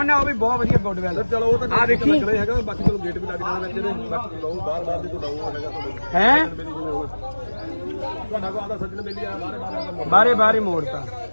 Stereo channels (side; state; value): both; inverted; correlation -1.00